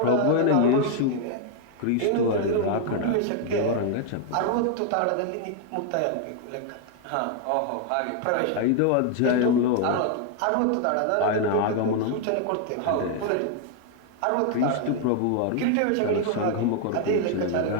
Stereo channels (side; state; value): both; different; correlation 0.00